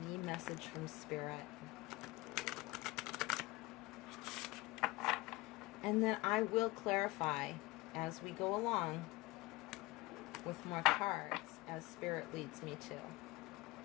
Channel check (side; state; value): right; quieter; 21.0 dB